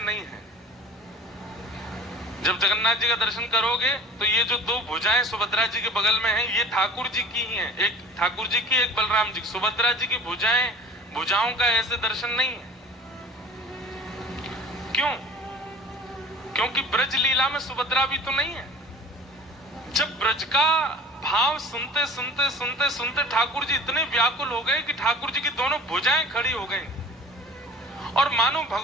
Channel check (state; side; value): normal; both; correlation 0.42